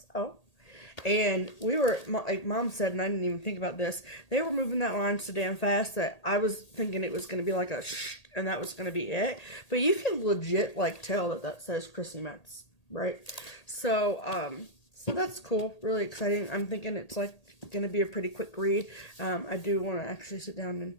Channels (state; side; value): late; right; 1.8 ms